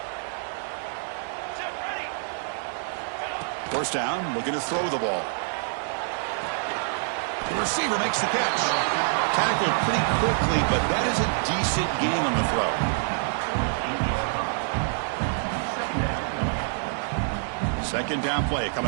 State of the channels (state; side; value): silent; left; digital silence